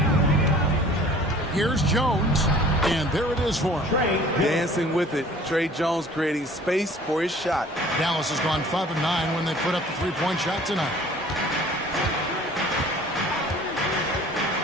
Here's Jones. And there it is for him. Dancing with it. Trey Jones creating space for his shot. Dallas has gone 5 of 9 when they put up the three-point shot tonight.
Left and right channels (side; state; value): both; normal; correlation 0.50